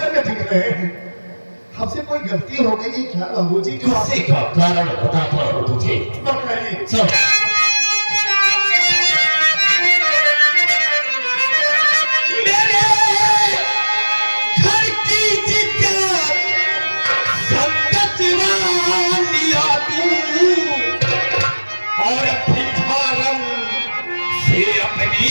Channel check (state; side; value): inverted; both; correlation -1.00